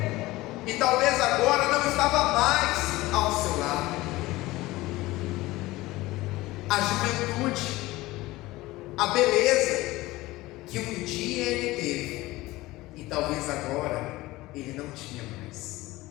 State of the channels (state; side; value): quieter; right; 19.0 dB